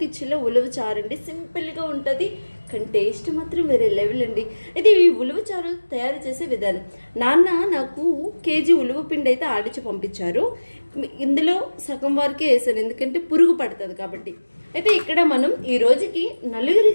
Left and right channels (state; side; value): inverted; both; correlation -1.00